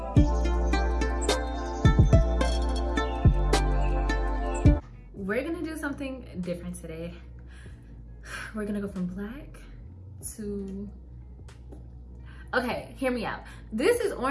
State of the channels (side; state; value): both; identical; correlation 1.00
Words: We're gonna do something different today. We're gonna go from black to, okay, hear me out. This is